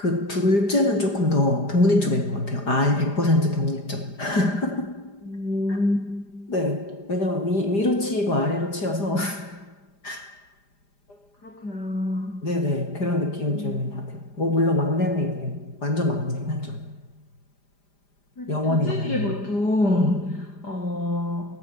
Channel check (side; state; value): right; late; 5.0 ms